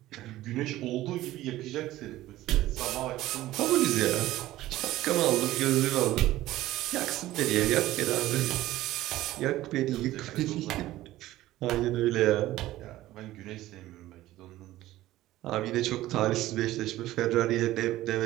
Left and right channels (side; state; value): left; quieter; 15.7 dB